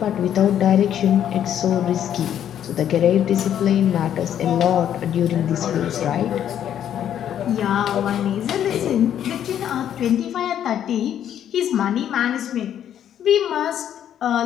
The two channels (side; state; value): right; quieter; 10.1 dB